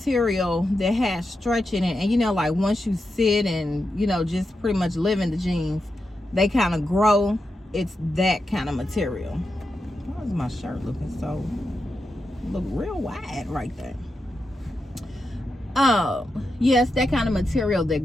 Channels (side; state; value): both; normal; correlation 0.88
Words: that has stretch in it, and you know, like once you sit and, you know, just pretty much live in the jeans, they kind of grow. It's that kind of material. Why is my shirt looking so, look real wide right there? Yes, that kind of material that